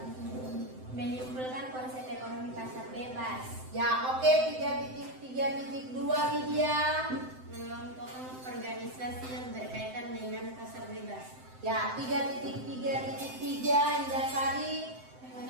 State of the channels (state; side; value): late; left; 7.8 ms